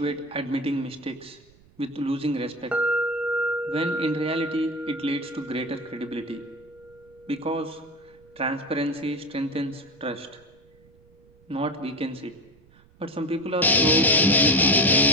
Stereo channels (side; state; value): right; noise; rumble, 29 dB below the sound